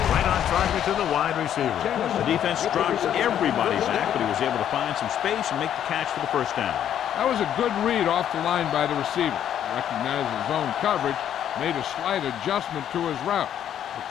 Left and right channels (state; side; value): quieter; right; 10.1 dB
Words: right on target to the wide receiver. The defense drops everybody's back, but he was able to find some space and make the catch for the 1st down. That was a good read off the line by the receiver. Recognized his zone coverage, made a slight adjustment to his route. The